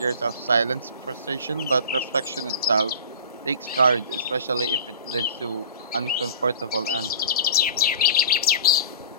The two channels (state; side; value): inverted; both; correlation -0.39